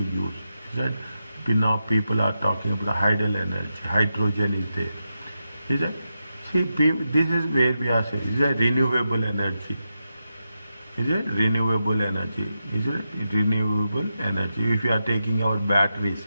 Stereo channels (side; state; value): both; inverted; correlation -0.88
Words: Is that now people are talking about the hydel energy, hydrogen is there. Is that see this is where we are saying is that renewable energy. Is it renewable energy? Is it renewable energy? If you are taking our batteries,